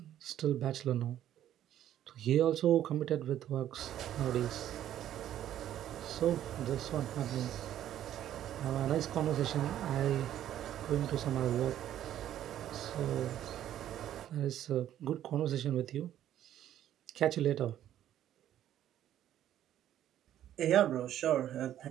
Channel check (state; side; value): quieter; left; 11.6 dB